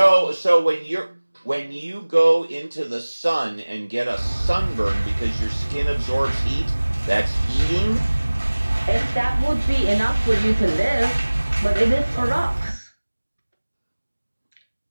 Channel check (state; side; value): inverted; both; correlation -1.00